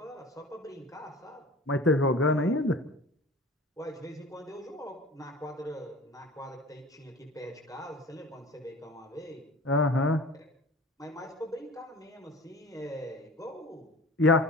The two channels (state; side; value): normal; both; correlation 0.41